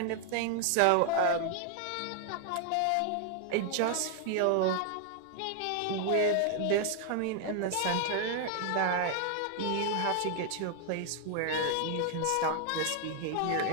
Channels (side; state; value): both; different; correlation 0.00